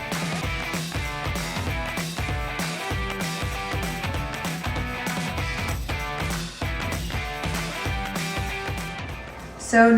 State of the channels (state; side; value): identical; both; correlation 1.00